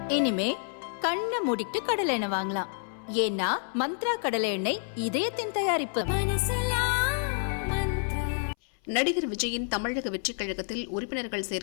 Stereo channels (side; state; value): right; silent; 59 dB below the other